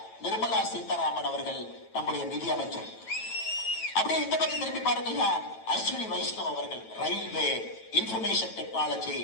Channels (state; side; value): late; right; 9.1 ms